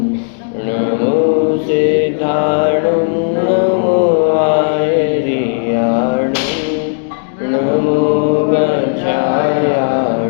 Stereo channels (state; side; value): silent; right; digital silence